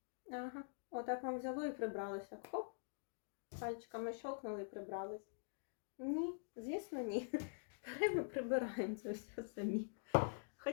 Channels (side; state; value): right; silent; digital silence